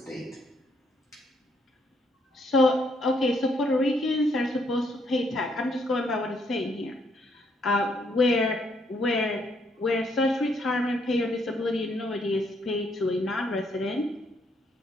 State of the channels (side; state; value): both; normal; correlation 0.72